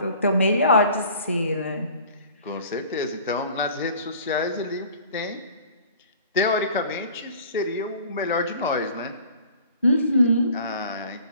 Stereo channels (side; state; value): both; inverted; correlation -0.48